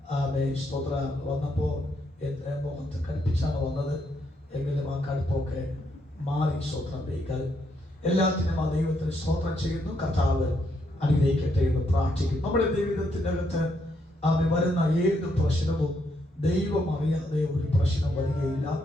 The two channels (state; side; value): normal; both; correlation 0.76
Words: സ്തോത്ര വന്നപ്പോൾ മുഖത്ത് കടുപ്പിച്ചാണ് വന്നത്. എങ്കിലും ആ കടുപ്പൊക്കെ മാറി. സ്തോത്രം ദൈവം എല്ലാത്തിനും ആ ദൈവത്തിന് സ്തോത്രം ചെയ്യുന്നു. കർത്താവ് അനുഗ്രഹിക്കട്ടെ എന്ന് പ്രാർത്ഥിക്കുന്നു. നമ്മുടെ ജീവിതത്തിൻ്റെ അകത്ത് വരുന്ന ഏത് പ്രശ്നവും ദൈവം അറിയാതെ ഒരു പ്രശ്നം വരികയില്ല.